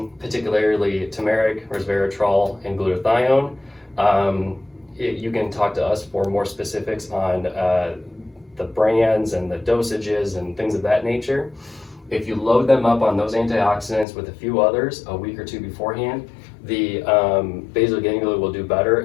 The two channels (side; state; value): right; drops out; at 14.1 s